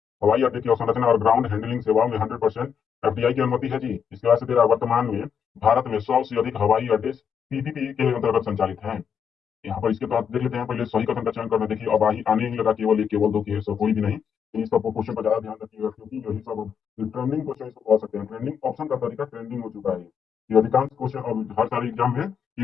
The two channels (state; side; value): quieter; right; 7.4 dB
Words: हवाई अड्डे की अवसंरचना और ग्राउंड हैंडलिंग सेवाओं में 100% FDI की अनुमति है जी। इसके बाद से तेरा वर्तमान में भारत में 100 से अधिक हवाई अड्डे पीपीपी के अंतर्गत संचालित है। यहाँ पर इसके तहत देख लेते हैं, पहले सही कथन का चयन करना। देखिए अब आने ही लगा केवल एक, केवल दो केस, कोई भी नहीं। इन सब क्वेश्चन पर ज्यादा ध्यान रखिएगा, क्योंकि यही सब ट्रेंडिंग क्वेश्चन इसको कह सकते हैं। ट्रेंडिंग ऑप्शन का तरीका ट्रेंडिंग हो चुका है। ये अधिकांश क्वेश्चन अब हर सारे एग्जाम में